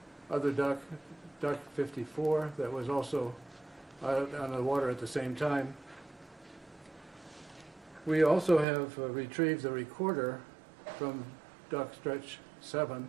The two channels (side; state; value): left; drops out; at 8.7 s